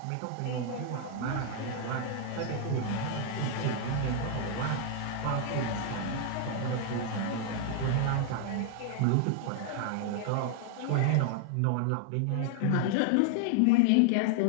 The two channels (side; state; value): both; different; correlation 0.00